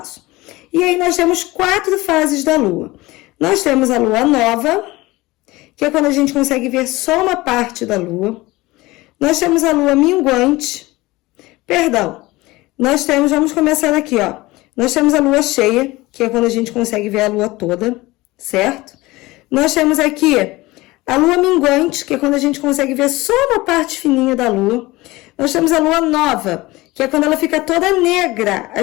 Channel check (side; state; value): right; quieter; 20.4 dB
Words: E aí nós temos 4 fases da Lua. Nós temos a Lua nova, que é quando a gente consegue ver só uma parte da Lua. Nós temos a Lua minguante. Vamos começar aqui, ó. Nós temos a Lua cheia, que é quando a gente consegue ver a Lua toda, certo? Nós temos aqui a Lua minguante, que é quando a gente consegue ver só uma parte fininha da Lua. Nós temos a Lua nova, que é quando ela fica toda negra. A